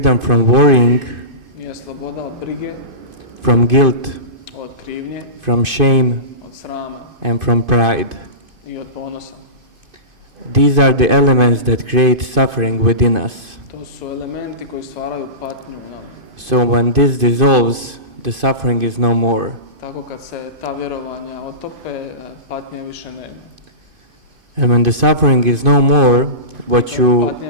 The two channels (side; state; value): left; late; 2.5 ms